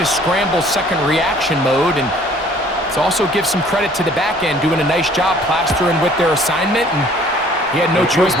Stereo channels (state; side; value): normal; both; correlation 0.55